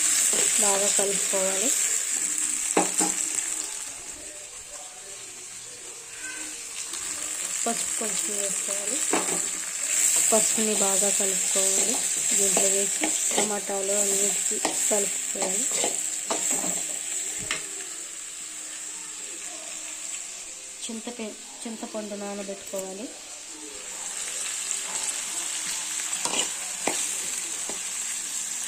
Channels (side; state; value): both; identical; correlation 1.00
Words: బాగా కలుపుకోవాలి. పసుపు కొంచెం వేసుకోవాలి. పసుపుని బాగా కలుపుకోవాలి. దీంట్లో వేసి టమాటాలు అన్నిటికీ కలుపుకోవాలి. చింతపండు నానబెట్టుకోవాలి.